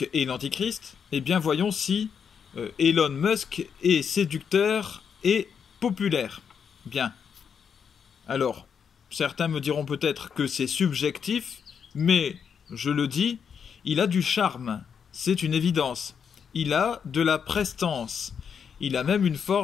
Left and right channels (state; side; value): quieter; right; 7.0 dB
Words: est l'antichrist, eh bien voyons si Elon Musk est séducteur et populaire. Bien. Alors, certains me diront peut-être que c'est subjectif, mais je le dis, il a du charme, c'est une évidence. Il a de la prestance, il a même une